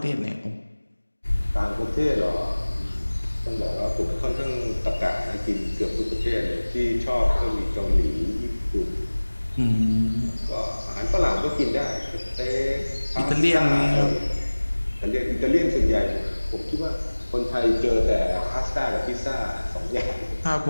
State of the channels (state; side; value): inverted; both; correlation -1.00